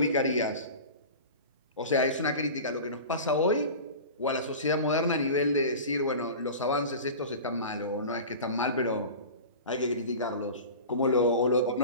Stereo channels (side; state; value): both; inverted; correlation -0.34